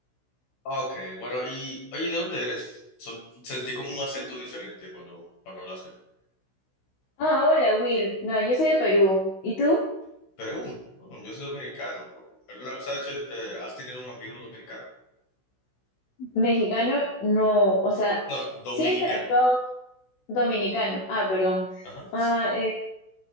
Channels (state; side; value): late; right; 16 ms